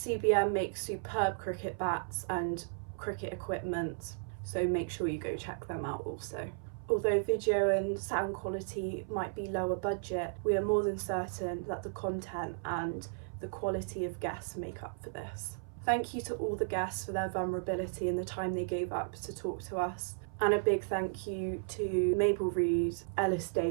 makes superb cricket bats and cricket equipment, so make sure you go check them out also. Although video and sound quality might be lower budget, we are more than certain that the content and the quality of guests make up for this. Thank you to all the guests for their vulnerability and the time they gave up to talk to us. And a big thank you to Mabel Reed, Ellis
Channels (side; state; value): left; silent; 55 dB below the other